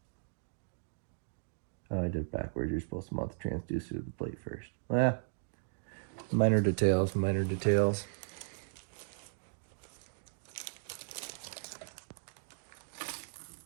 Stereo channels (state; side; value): silent; left; digital silence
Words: oh, I did it backwards. You're supposed to mount the transducer to the plate first. Well, minor details, minor details.